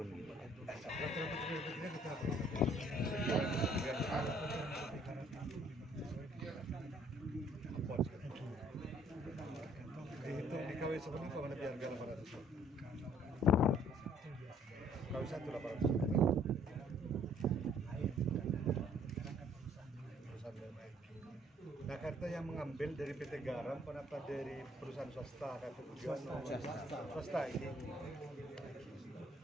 Dihitung di KW sebenarnya mana biar 800. KW 1 800. Nah, kartu yang mengambil dari PT Garam, kenapa dari perusahaan swasta? Kartu tujuan swasta ini.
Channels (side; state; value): both; normal; correlation 0.61